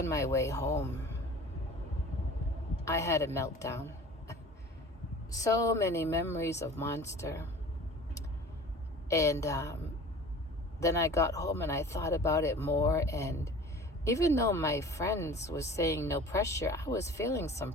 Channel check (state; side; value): normal; both; correlation 0.42